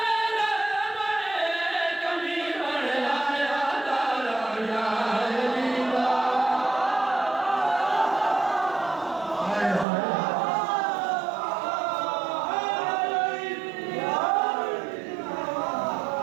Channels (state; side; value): drops out; left; at 9.9 s